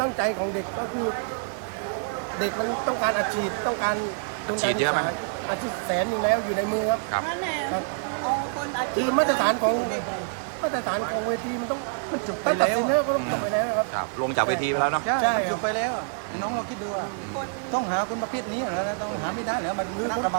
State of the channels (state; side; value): silent; left; digital silence